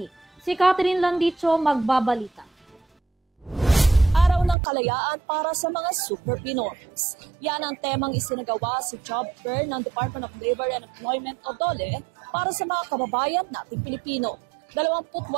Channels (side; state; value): left; drops out; at 4.5 s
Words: Si Catherine Landicho magbabalita. Araw ng Kalayaan para sa mga Super Pinoys. Yan ang temang isinagawa sa job fair ng Department of Labor and Employment o DOLE para sa mga kababayan nating Pilipino.